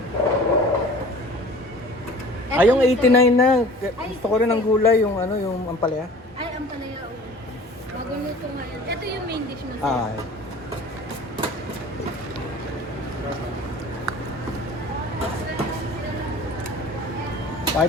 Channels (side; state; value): both; normal; correlation 0.44